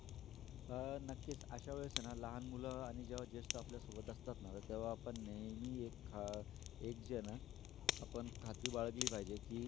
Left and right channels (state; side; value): quieter; right; 13.0 dB